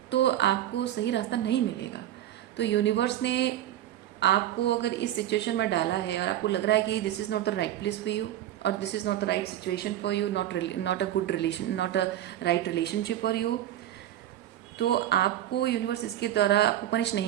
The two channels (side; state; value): left; quieter; 12.4 dB